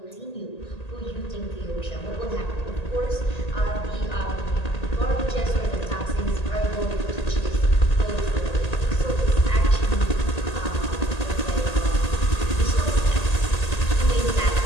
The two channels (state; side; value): late; right; 1.8 ms